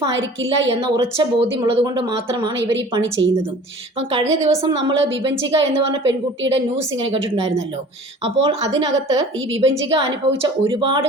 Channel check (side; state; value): both; normal; correlation 0.45